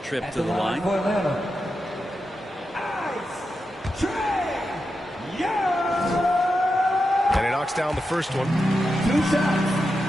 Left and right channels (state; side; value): normal; both; correlation 0.88